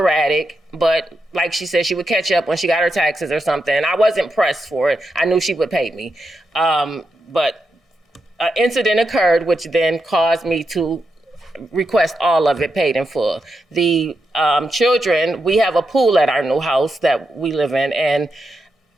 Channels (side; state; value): both; normal; correlation 0.85